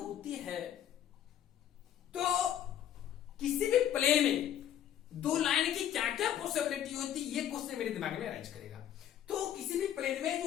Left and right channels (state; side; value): quieter; right; 10.7 dB